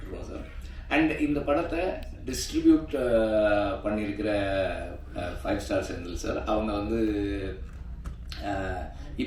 சார். அண்ட் இந்த படத்தை டிஸ்ட்ரிபியூட் பண்ணியிருக்கிற 5 ஸ்டார் செந்தில் சார், அவங்க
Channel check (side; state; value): both; identical; correlation 1.00